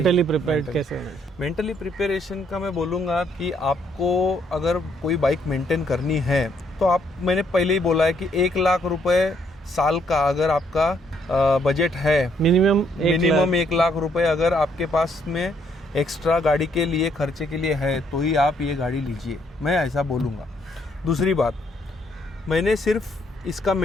प्रिपेयर्ड कैसे? मेंटली प्रिपरेशन का मैं बोलूँगा कि आपको अगर कोई बाइक मेंटेन करनी है तो मैंने पहले ही बोला है कि 1 लाख रुपए साल का अगर आपका बजट है, मिनिमम 1 लाख रुपए अगर आपके पास में एक्स्ट्रा गाड़ी के लिए खर्चे के लिए है, तो ही आप ये गाड़ी लीजिए, मैं ऐसा बोलूँगा। दूसरी बात, मैंने सिर्फ इसका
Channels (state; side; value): normal; both; correlation 0.70